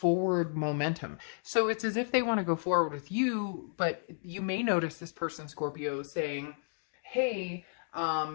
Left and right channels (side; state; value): right; silent; digital silence